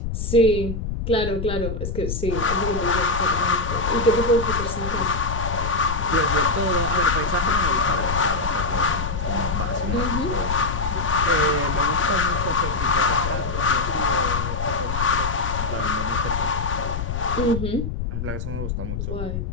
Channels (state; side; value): noise; left; rumble, 4 dB below the sound